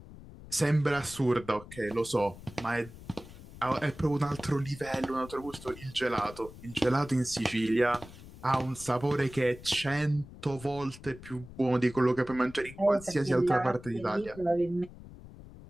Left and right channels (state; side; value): noise; left; rumble, 17 dB below the sound